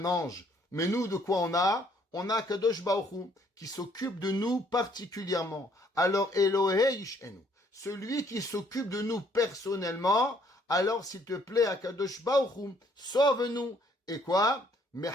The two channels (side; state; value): both; normal; correlation 0.64